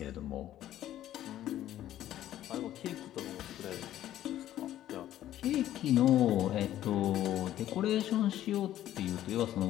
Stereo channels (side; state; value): right; quieter; 12.7 dB